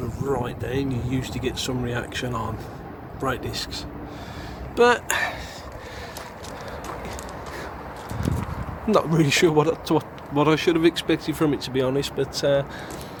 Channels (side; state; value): both; identical; correlation 1.00